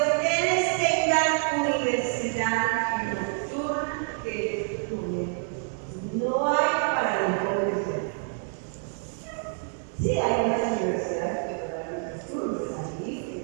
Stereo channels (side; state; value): left; silent; 60 dB below the other